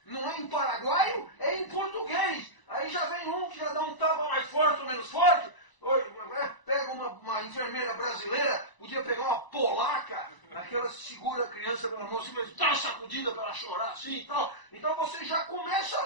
não é em paraguaio, é em português. Aí já vem um que já dá um tapa mais forte ou menos forte, pega uma enfermeira brasileira, podia pegar uma polaca, aquela segura a criança pela mão, assim, dá uma sacudida para ela chorar assim e tal. Então você já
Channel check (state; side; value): late; right; 1.0 ms